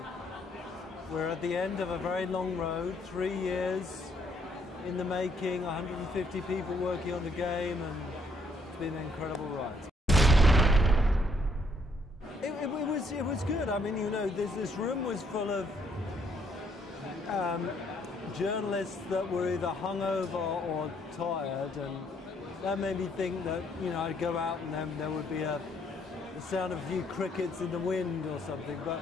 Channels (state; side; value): normal; both; correlation 0.69